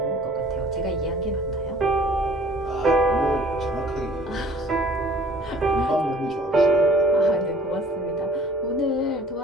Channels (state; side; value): normal; both; correlation 0.51